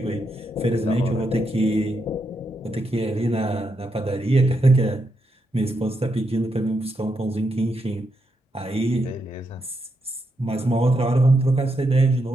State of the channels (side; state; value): both; normal; correlation 0.82